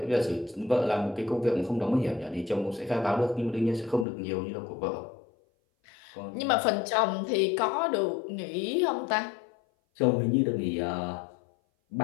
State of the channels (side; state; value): right; drops out; at 4.0 s